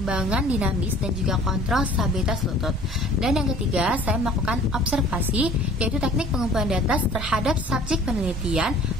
dinamis dan juga kontrol stabilitas lutut. Dan yang ketiga, saya melakukan observasi, yaitu teknik pengumpulan data terhadap subjek penelitian,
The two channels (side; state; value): both; normal; correlation 0.50